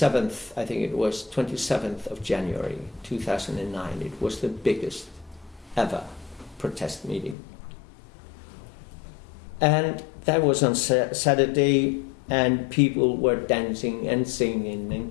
I think it was 27th of January 2009, it was the biggest ever protest meeting. And that was on Saturday, and people were dancing and singing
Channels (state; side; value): drops out; right; at 7.4 s